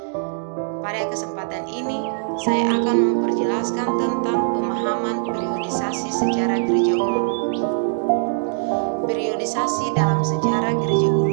Pada kesempatan ini, saya akan memperjelaskan tentang pemahaman periodisasi sejarah gereja umum. Periodisasi dalam sejarah gereja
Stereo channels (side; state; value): left; silent; digital silence